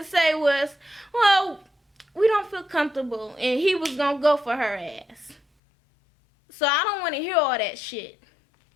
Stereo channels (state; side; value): drops out; right; at 5.4 s